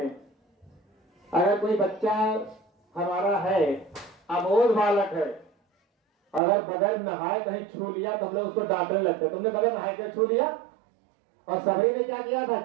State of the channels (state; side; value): drops out; left; at 6.4 s